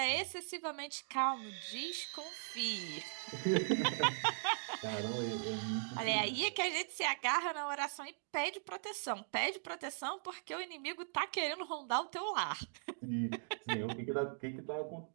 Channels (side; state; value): left; silent; digital silence